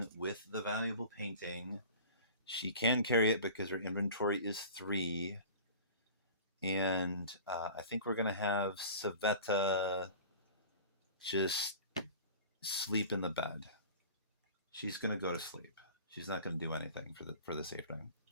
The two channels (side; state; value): both; inverted; correlation -0.40